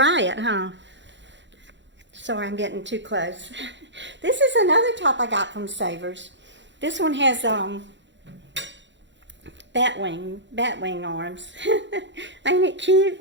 it, huh? Sorry, I'm getting too close. This is another top I got from Savers. This one has bat wing arms. Ain't it cute?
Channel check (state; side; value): late; left; 0.53 ms